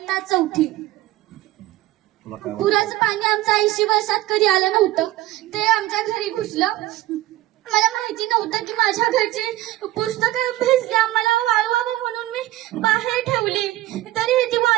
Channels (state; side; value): quieter; left; 16.3 dB